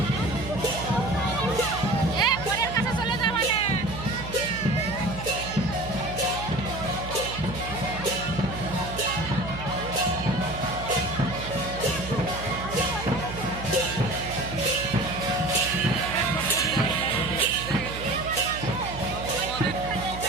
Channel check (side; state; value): right; noise; hum, 9 dB below the sound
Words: পরের কাছে চলে যা মানে